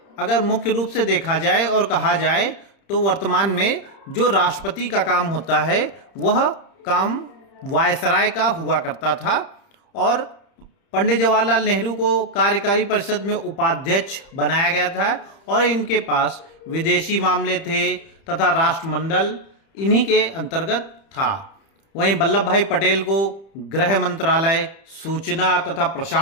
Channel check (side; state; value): right; late; 30 ms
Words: अगर मुख्य रूप से देखा जाए और कहा जाए तो वर्तमान में जो राष्ट्रपति का काम होता है वह काम वायसराय का हुआ करता था, और पंडित जवाहरलाल नेहरू को कार्यकारी परिषद में उपाध्यक्ष बनाया गया था और इनके पास विदेशी मामले थे तथा राष्ट्रमंडल इन्हीं के अंतर्गत था। वहीं वल्लभ भाई पटेल को गृह मंत्रालय, सूचना तथा